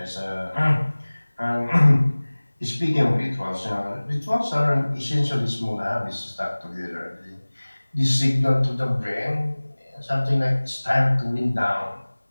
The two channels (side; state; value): both; inverted; correlation -1.00